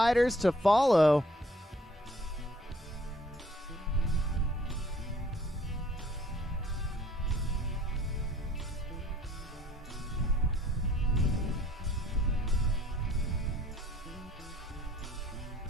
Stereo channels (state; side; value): normal; both; correlation 0.57